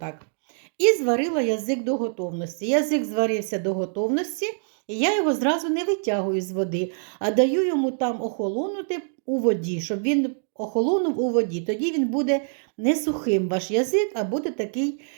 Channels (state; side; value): silent; left; digital silence